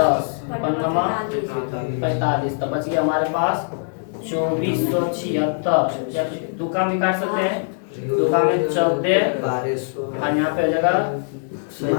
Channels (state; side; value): silent; right; digital silence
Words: 5 45। तो बच गया हमारे पास 2476। या तो दो काम भी काट सकते हैं, दो काम में 14 और यहाँ पे हो जाएगा